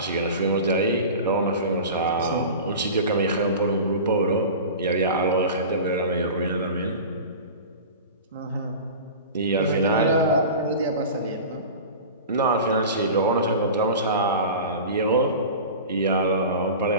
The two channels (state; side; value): inverted; both; correlation -0.33